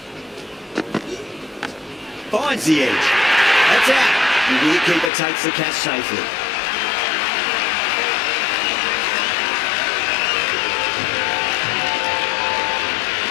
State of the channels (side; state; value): right; drops out; at 5.1 s